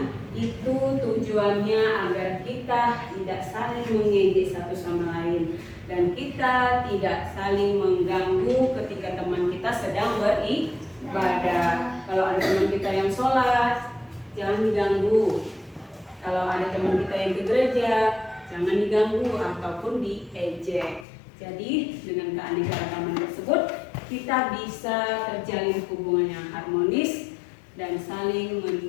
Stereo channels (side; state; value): right; drops out; at 21.1 s